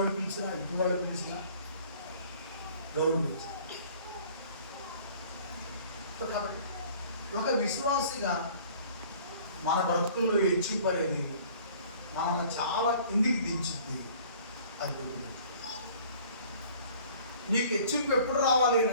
పిలిచినా ఇటువాడు పిలిచినా గౌరవించాలి. కాబట్టి ఒక విశ్వాసిగా మన బ్రతుకుల్లో హెచ్చింపు అనేది మనల్ని చాలా కిందికి దించుద్ది. అది నీకు హెచ్చింపు ఎప్పుడు రావాలి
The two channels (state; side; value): inverted; both; correlation -0.51